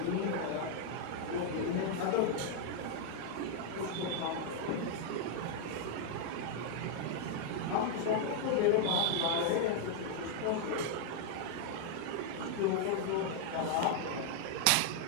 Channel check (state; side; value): different; both; correlation 0.00